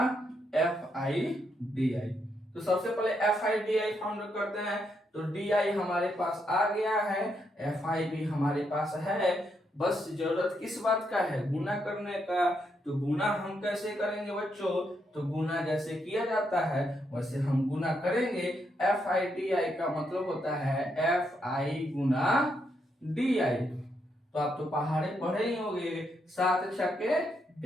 F I D I. तो सबसे पहले F I D I found करते हैं। तो डी आई हमारे पास आ गया है, एफ आई भी हमारे पास है, बस जरूरत किस बात का है, गुना करने का। तो गुना हम कैसे करेंगे बच्चों, तो गुना जैसे किया जाता है वैसे हम गुना करेंगे। एफ आई डी आई का मतलब होता है F I Guna D I. तो आप तो पहाड़े पढ़े ही होंगे, 7 छक्के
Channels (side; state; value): both; normal; correlation 0.79